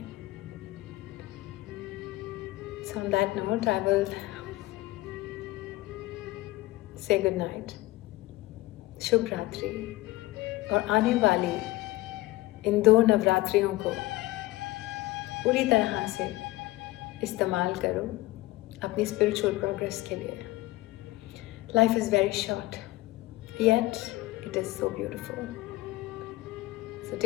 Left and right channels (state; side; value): quieter; right; 18.7 dB